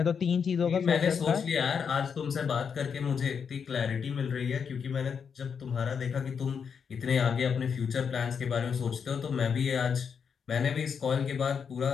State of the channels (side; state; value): right; quieter; 6.6 dB